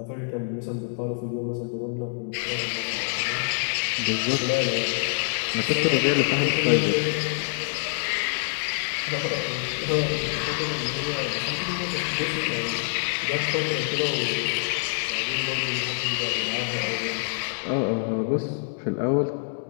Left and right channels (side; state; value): right; silent; 61 dB below the other